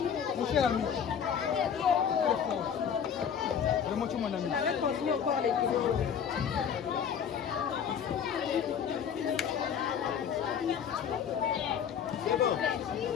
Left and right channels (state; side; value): quieter; right; 7.9 dB